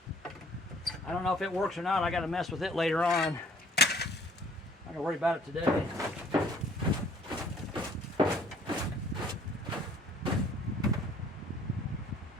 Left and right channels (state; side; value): normal; both; correlation 0.57